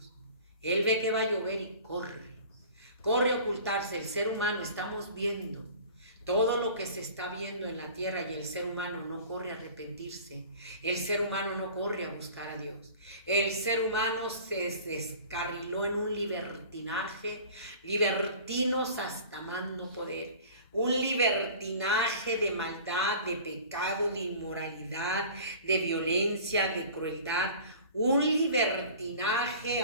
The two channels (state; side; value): inverted; both; correlation -0.43